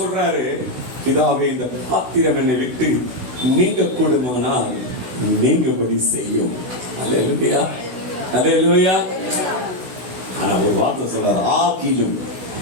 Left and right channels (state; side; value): late; left; 16 ms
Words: பிதாவே இந்த பாத்திரம் என்னை விட்டு நீங்க கூடுமானால் நீங்கபடி செய்யும். அல்லேலூயா, அல்லேலூயா. ஆனா ஒரு வார்த்தை சொல்றாரு, ஆகிலும்.